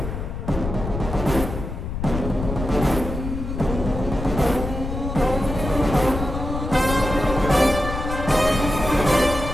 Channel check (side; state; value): left; noise; rumble, 5 dB below the sound